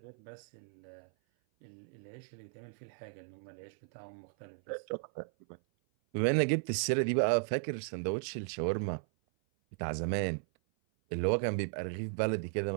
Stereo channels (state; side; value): silent; left; 54 dB below the other